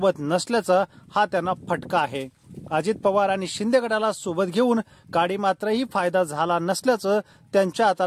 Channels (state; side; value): identical; both; correlation 1.00